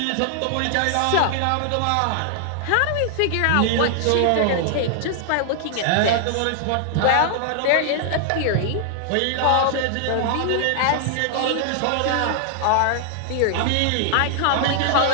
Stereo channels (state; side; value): different; both; correlation -0.01